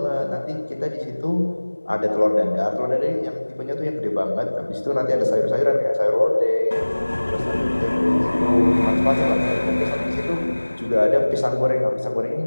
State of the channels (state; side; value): inverted; both; correlation -1.00